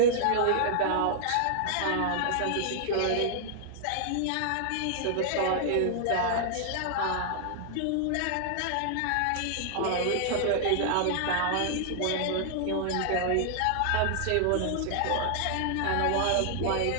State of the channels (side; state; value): both; different; correlation -0.01